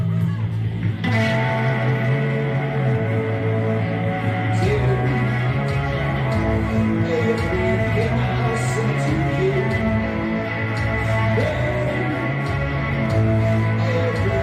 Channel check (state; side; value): identical; both; correlation 1.00